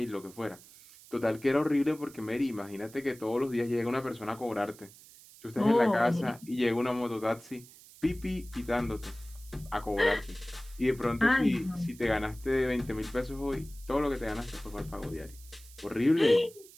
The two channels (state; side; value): noise; right; hiss, 21 dB below the sound